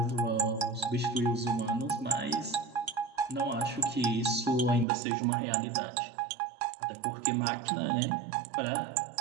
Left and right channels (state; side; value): drops out; left; at 4.9 s